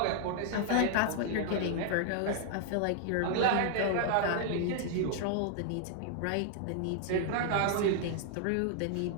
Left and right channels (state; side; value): different; both; correlation 0.00